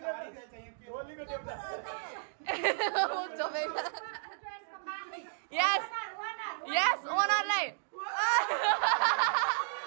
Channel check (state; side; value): silent; left; digital silence